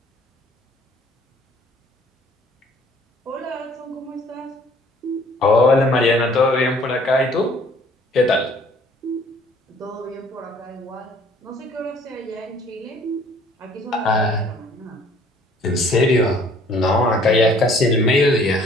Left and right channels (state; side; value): normal; both; correlation 0.57